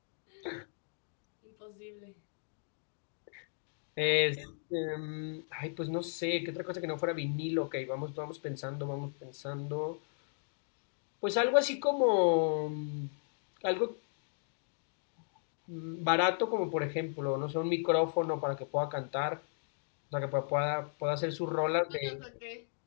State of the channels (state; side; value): silent; right; digital silence